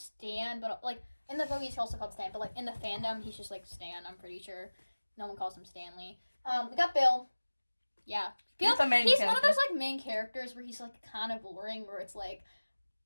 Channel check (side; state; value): both; inverted; correlation -1.00